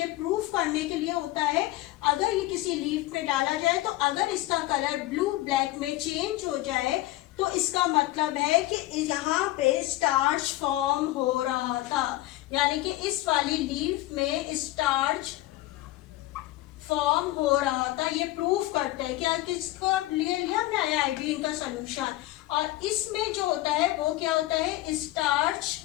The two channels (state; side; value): quieter; right; 17.0 dB